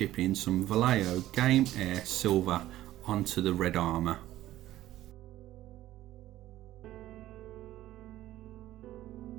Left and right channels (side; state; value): left; quieter; 14.4 dB